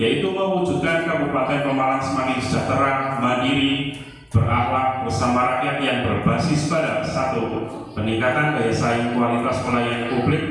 mewujudkan Kabupaten Pemalang semakin sejahtera, mandiri, berakhlak bersama rakyat yang berbasis pada satu, peningkatan daya saing kualitas pelayanan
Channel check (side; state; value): both; identical; correlation 1.00